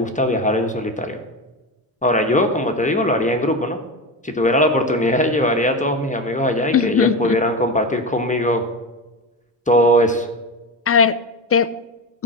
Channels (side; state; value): both; normal; correlation 0.20